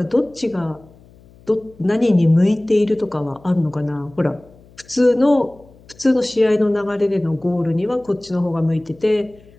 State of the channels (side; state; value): left; noise; hum, 26 dB below the sound